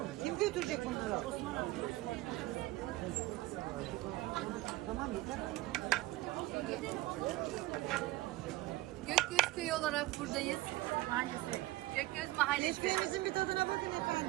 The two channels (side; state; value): left; quieter; 18.4 dB